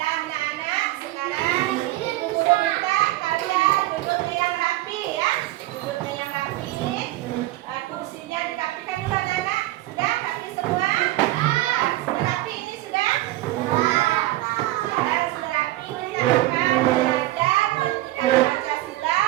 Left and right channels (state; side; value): quieter; left; 16.8 dB